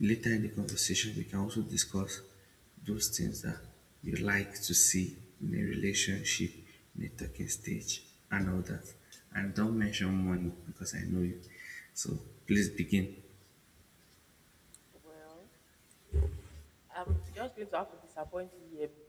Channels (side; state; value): both; identical; correlation 1.00